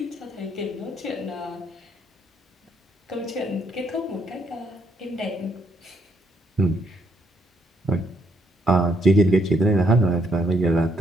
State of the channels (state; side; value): normal; both; correlation 0.72